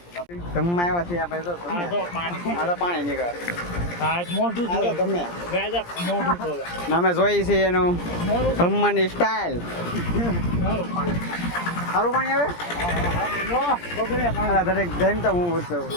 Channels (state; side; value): late; right; 17 ms